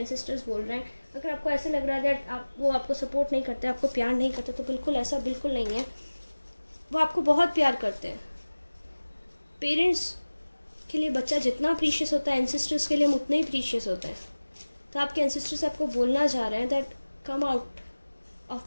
बोल रहे हैं। अगर आपको ऐसे लग रहा है दैट वो आपको सपोर्ट नहीं करते, आपको प्यार नहीं करते, तो बिल्कुल ऐसा बिल्कुल नहीं है। वो आपको बहुत प्यार करते हैं। पेरेंट्स के लिए बच्चा जितना प्रीशियस होता है, एंसेस्टर्स के लिए हम उतना ही प्रीशियस होता है। तो आपके एंसेस्टर्स आपको बोलना चाह रहे हैं that come out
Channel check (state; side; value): inverted; both; correlation -1.00